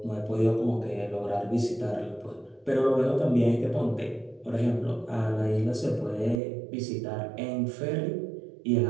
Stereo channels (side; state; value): left; drops out; at 6.4 s